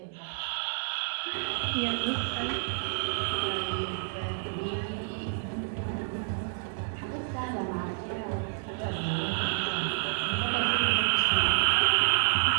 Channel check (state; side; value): silent; left; digital silence